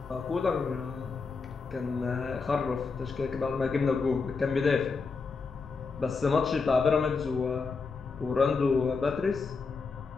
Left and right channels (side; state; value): right; quieter; 4.7 dB